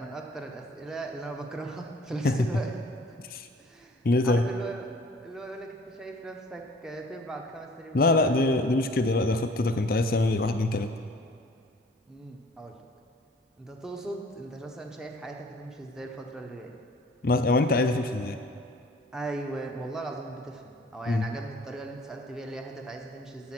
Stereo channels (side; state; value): both; normal; correlation 0.51